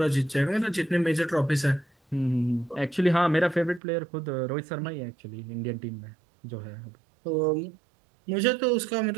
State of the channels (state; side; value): drops out; left; at 3.8 s